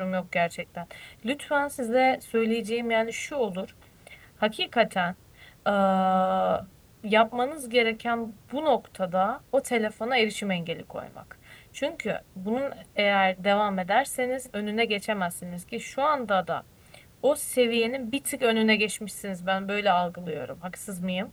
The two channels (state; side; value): identical; both; correlation 1.00